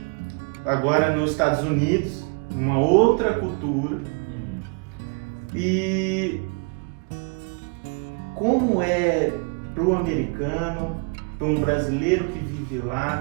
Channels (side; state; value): left; quieter; 35.3 dB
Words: agora nos Estados Unidos, uma outra cultura. E como é para o americano, para um brasileiro que vive